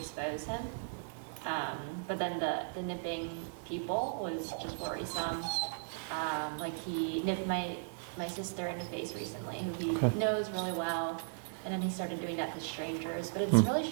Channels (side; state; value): left; silent; digital silence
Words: him. But then the nipping people was just worrisome. Like he nipped my sister in the face recently, who he knows really well, and then he started doing that to strangers. But it's really